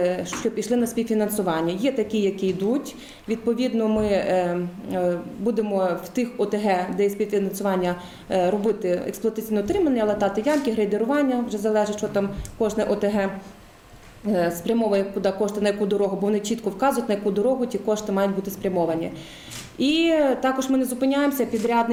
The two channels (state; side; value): identical; both; correlation 1.00